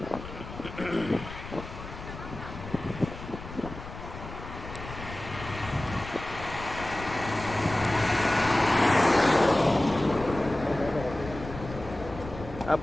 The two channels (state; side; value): noise; left; rumble, 12 dB below the sound